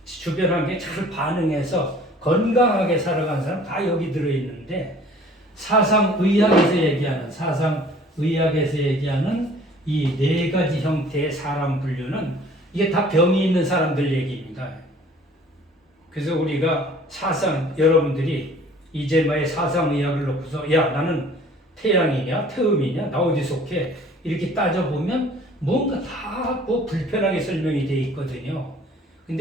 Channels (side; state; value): both; normal; correlation 0.52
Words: 주변 환경에 잘 반응해서 건강하게 살아간 사람 다 여기 들어 있는데 사상의학에서 얘기하는 이 네 가지 형태의 사람 분류는 이게 다 병이 있는 사람들 얘기입니다. 그래서 우리가 여러분들이 이제마의 사상의학을 놓고서 야 나는 태양이냐 태음이냐 나 어디 속해 이렇게 따져보면 뭔가 다 뭐 불편하게 설명이 돼 있거든요.